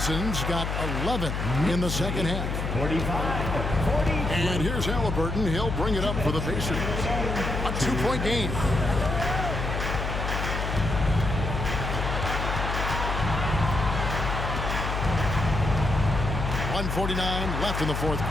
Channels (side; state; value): left; noise; hum, 2 dB below the sound